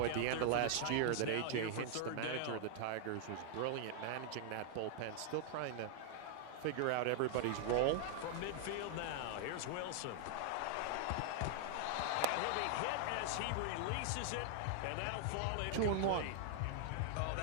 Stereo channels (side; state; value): both; different; correlation -0.01